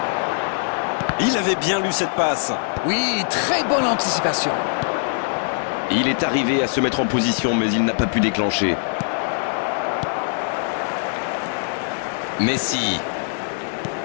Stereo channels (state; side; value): silent; right; digital silence